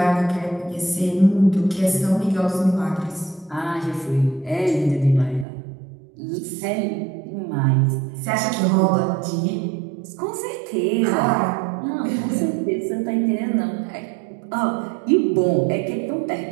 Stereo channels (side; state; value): left; drops out; at 5.5 s